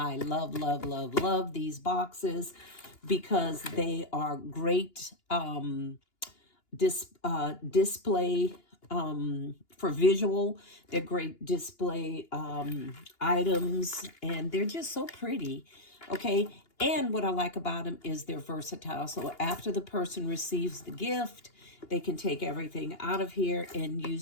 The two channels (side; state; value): right; late; 2.8 ms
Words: love these boxes because they are great display for visual. They're great display items, and they're just so pretty. Okay, and what I like about them is they're versatile. So after the person receives the gift, they can take everything out of here and